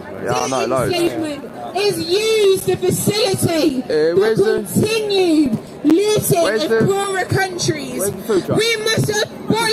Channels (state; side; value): identical; both; correlation 1.00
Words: Yeah, I know, loads. Enslavement is used to facilitate where's the the- continued looting Where's of the- poorer countries. where's the food truck? We must